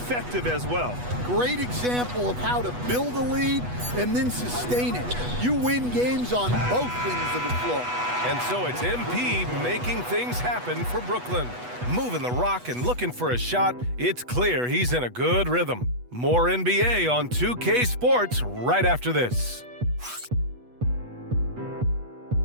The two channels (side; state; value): left; late; 8.2 ms